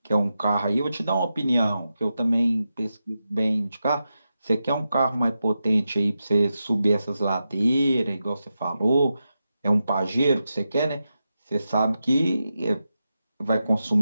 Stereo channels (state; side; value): inverted; both; correlation -0.89